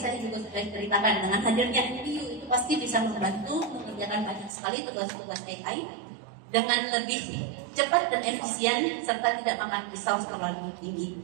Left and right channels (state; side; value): drops out; left; at 4.5 s